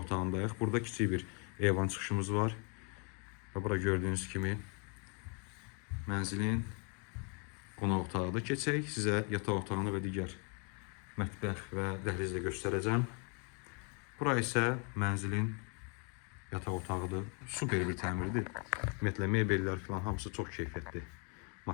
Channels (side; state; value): right; quieter; 36.9 dB